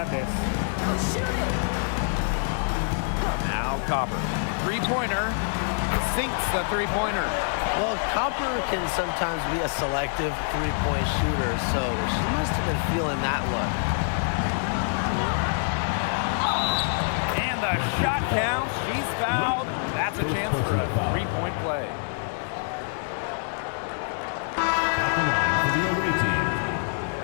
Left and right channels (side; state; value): right; silent; 61 dB below the other